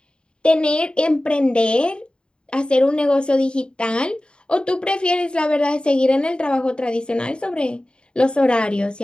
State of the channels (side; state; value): right; late; 0.052 ms